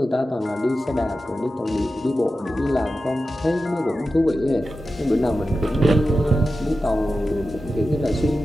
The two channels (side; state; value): both; normal; correlation 0.92